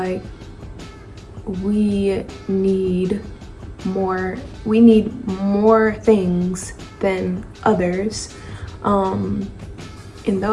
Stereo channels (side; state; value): both; identical; correlation 1.00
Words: we need more things than others, and